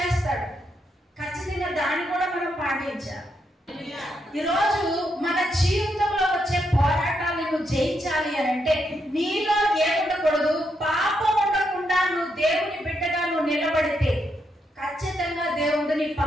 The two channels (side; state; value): both; normal; correlation 0.80